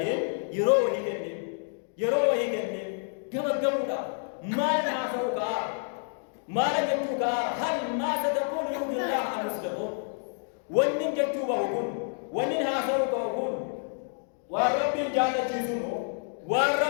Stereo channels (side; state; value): right; silent; 59 dB below the other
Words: يروه كنن كما ما نعصوك ما نجتوك هل ما ستقول يوم الله عن مسلمون ونن جتوك وقل ونن هاسوك وقل وربي جانة جيسونه